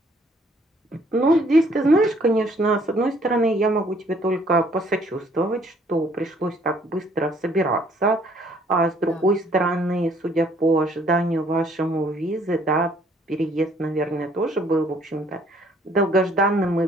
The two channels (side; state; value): both; normal; correlation 0.62